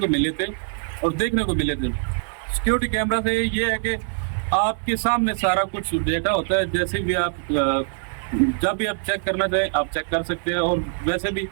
ملے تھے اور دیکھنے کو ملے تھے. سیکیورٹی کیمرہ سے یہ ہے کہ آپ کے سامنے سارا کچھ ڈیٹا ہوتا ہے, جیسے بھی آپ جب بھی آپ چیک کرنا چاہیں آپ چیک کر سکتے ہیں. اور ویسے بھی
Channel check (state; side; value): silent; left; 63 dB below the other